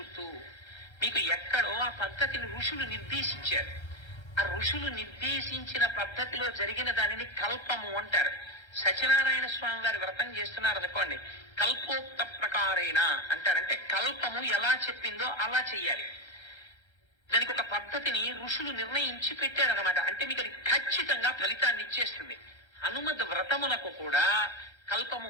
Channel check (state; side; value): late; right; 1.3 ms